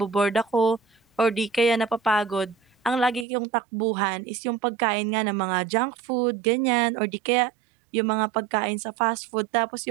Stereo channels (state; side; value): drops out; left; at 3.2 s